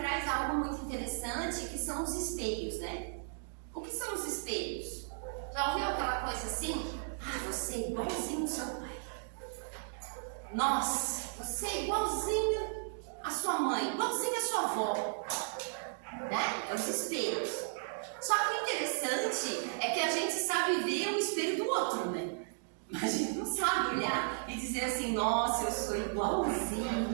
algo muito interessante, que são os espelhos, né? O que são os espelhos? Já ouviu aquela coisa assim? Ah, você é igualzinho ao seu pai. Nossa, você é igualzinho à sua mãe, igualzinho à sua avó. Né? É os espelhos. Só que o interessante é que a gente sabe ver o espelho do outro, né? Mas a gente não sabe olhar e dizer assim, nossa, eu sou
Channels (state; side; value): silent; left; digital silence